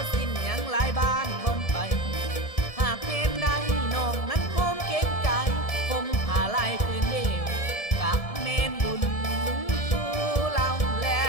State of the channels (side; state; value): right; late; 1.7 ms